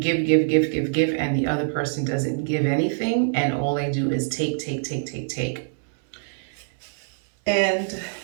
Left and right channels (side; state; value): left; silent; 62 dB below the other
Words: and the other person doesn't give anything, and all they do is take. And